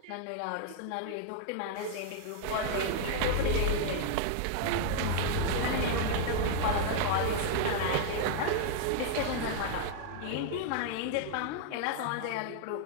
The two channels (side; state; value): both; different; correlation 0.00